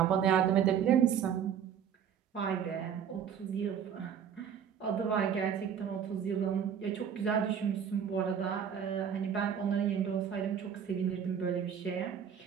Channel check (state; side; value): quieter; left; 8.2 dB